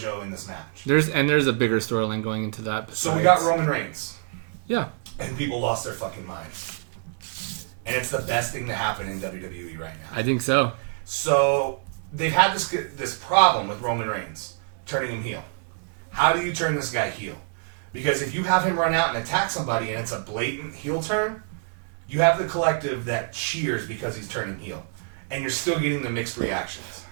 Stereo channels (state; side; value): silent; left; 56 dB below the other